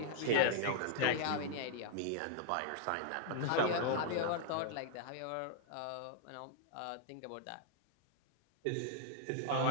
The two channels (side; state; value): both; different; correlation -0.01